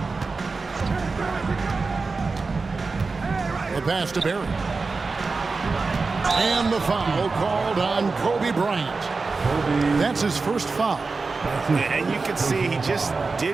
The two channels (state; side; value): quieter; left; 4.1 dB